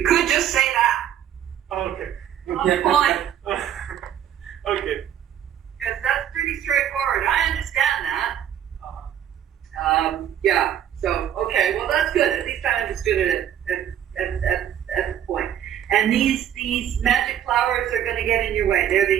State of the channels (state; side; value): quieter; left; 10.2 dB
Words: could just say that. Okay. Fine. Okay. Because that's pretty straightforward. I understand that. Yeah. So okay. Well, that's good. At least I understood it at the point. And these magic flowers are going to get in your way. They're